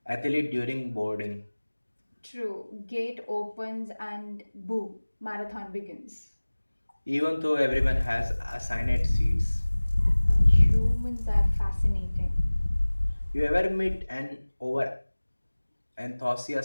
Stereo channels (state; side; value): inverted; both; correlation -1.00